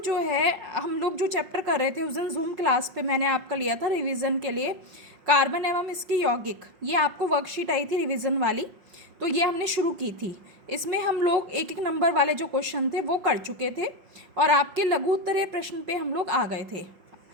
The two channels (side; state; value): left; late; 5.6 ms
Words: जो है हम लोग जो चैप्टर कर रहे थे उस दिन जूम क्लास पे मैंने आपका लिया था रिवीजन के लिए, कार्बन एवं इसकी यौगिक। ये आपको वर्कशीट आई थी रिवीजन वाली, तो ये हमने शुरू की थी। इसमें हम लोग एक एक नंबर वाले जो क्वेश्चन थे वो कर चुके थे और आपके लघु उत्तरीय प्रश्न पे हम लोग आ गए थे।